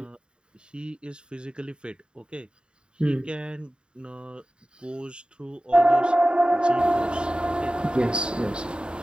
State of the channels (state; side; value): late; left; 0.051 ms